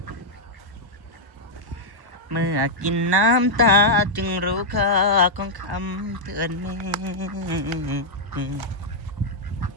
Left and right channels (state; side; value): late; left; 1.1 ms